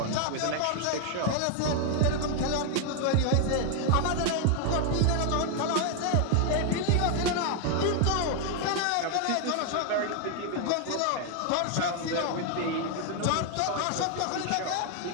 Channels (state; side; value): different; both; correlation 0.00